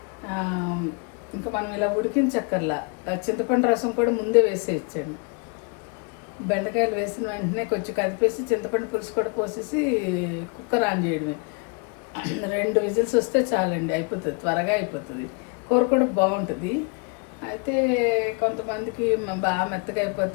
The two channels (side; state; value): right; quieter; 35.1 dB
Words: ఇంకా మనం ఇలా ఉడికించక్కర్లా. చింతపండు రసం కూడా ముందే వేసేయచ్చండి. బెండకాయలు వేసిన వెంటనే కొంచెం కదిపేసి చింతపండు పులుసు కూడా పోసేసి కుక్కర్ ఆన్ చేయడమే. 2 విజిల్స్ వస్తే చాలండి, అయిపోతుంది, త్వరగా అయిపోతుంది. కూర కూడా బాగుంటుంది. అయితే కొంతమందికి బాగా మెత్తగా